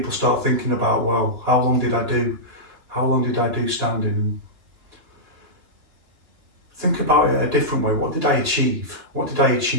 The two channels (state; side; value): late; left; 2.9 ms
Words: start thinking about, well, how long did I do? How long did I do standing? Think about it a different way. What did I achieve? What did I